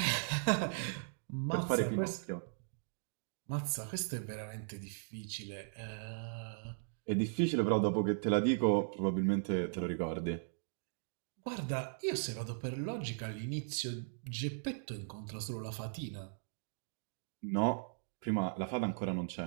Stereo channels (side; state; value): left; silent; digital silence